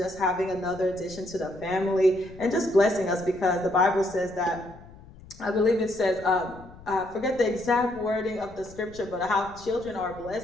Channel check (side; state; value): left; noise; rumble, 20 dB below the sound